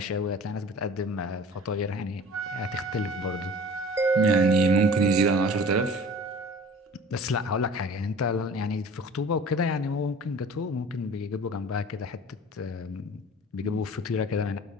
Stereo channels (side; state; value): both; normal; correlation 0.43